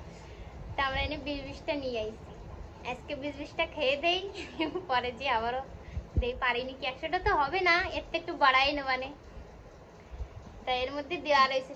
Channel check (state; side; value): identical; both; correlation 1.00